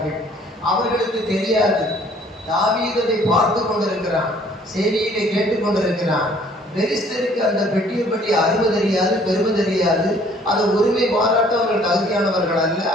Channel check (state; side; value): normal; both; correlation 0.58